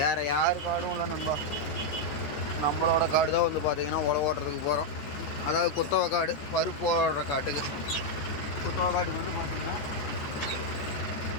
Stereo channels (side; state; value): right; late; 14 ms